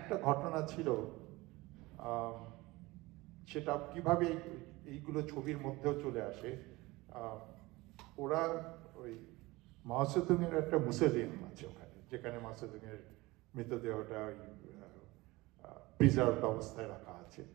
ঘটনা ছিল, সেটা কিভাবে এইগুলো ছবির মধ্যেও চলে আসে। ওরা ওই মাওসেতুংয়ের একটা মুসেলিয়াম আছে ওখানে, যেখানে মাওসেতুংয়ের মৃতদেহটা ওই প্রিজার্ভ অবস্থায় রাখা আছে।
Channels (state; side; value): quieter; left; 21.2 dB